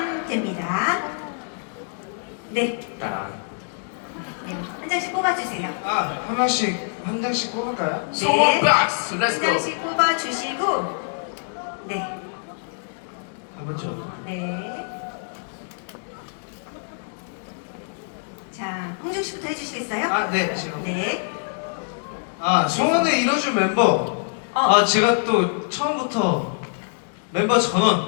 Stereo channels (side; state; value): right; silent; digital silence